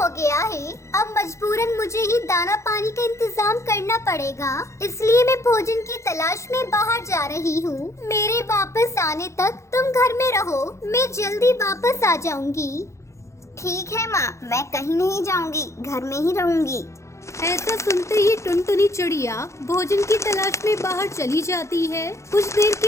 गया है। अब मजबूरन मुझे ही दाना पानी का इंतजाम करना पड़ेगा, इसलिए मैं भोजन की तलाश में बाहर जा रही हूँ। मेरे वापस आने तक तुम घर में रहो, मैं जल्दी वापस आ जाऊंगी। ठीक है माँ, मैं कहीं नहीं जाऊंगी, घर में ही रहूंगी। ऐसा सुनते ही टुनटुनी चिड़िया भोजन की तलाश में बाहर चली जाती है। कुछ देर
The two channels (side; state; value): right; late; 0.14 ms